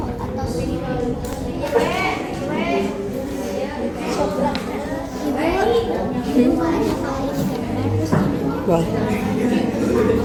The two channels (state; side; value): identical; both; correlation 1.00